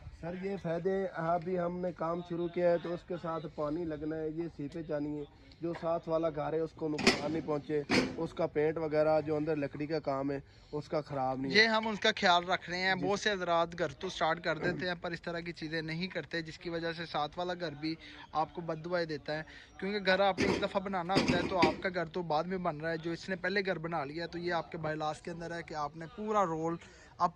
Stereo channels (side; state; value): both; identical; correlation 1.00